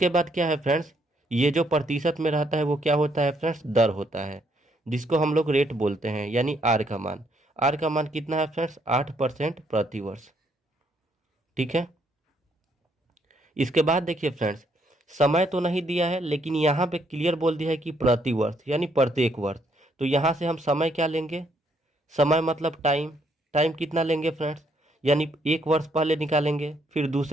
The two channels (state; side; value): normal; both; correlation 0.71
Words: बाद क्या है फ्रेंड्स, ये जो प्रतिशत में रहता है वो क्या होता है फ्रेंड्स, दर होता है, जिसको हम लोग रेट बोलते हैं, यानी आर का मान। आर का मान कितना है फ्रेंड्स, 8% प्रति वर्ष। ठीक है, इसके बाद देखिए फ्रेंड्स समय तो नहीं दिया है, लेकिन यहाँ पे क्लियर बोल दिया है कि प्रति वर्ष यानी प्रत्येक वर्ष। तो यहाँ से हम समय क्या लेंगे, समय मतलब टाइम। टाइम कितना लेंगे फ्रेंड्स, यानी एक वर्ष पहले निकालेंगे, फिर